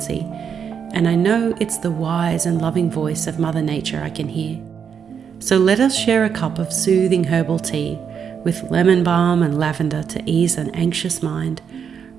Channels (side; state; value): left; quieter; 7.2 dB